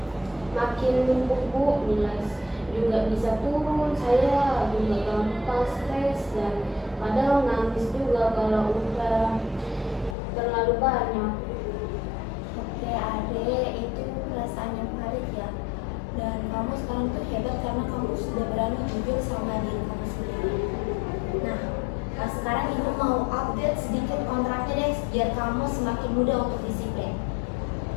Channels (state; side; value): drops out; right; at 10.2 s